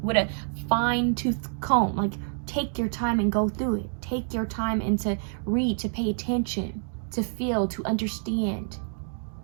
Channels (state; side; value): silent; left; 60 dB below the other